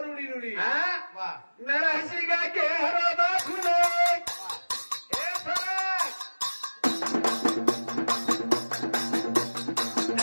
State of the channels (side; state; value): both; inverted; correlation -1.00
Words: रूडी रूडी हा वाह नरहसी गा के हरो दाखुले हे फरक